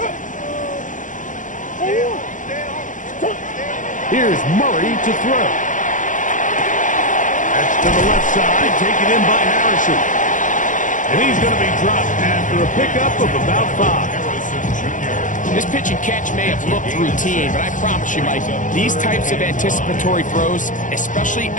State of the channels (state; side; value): late; right; 0.37 ms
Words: Here's Murray to throw. That's to the left side, taken in by Harrison. And he's going to be dropped after a pickup of about 5. This pitch and catch may have looked routine, but I promise you, Mike, these types of anticipatory throws, especially